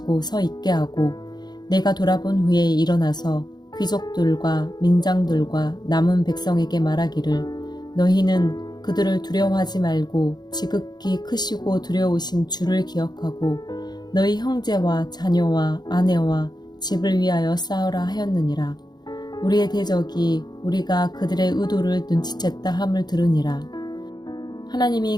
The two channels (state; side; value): late; right; 0.20 ms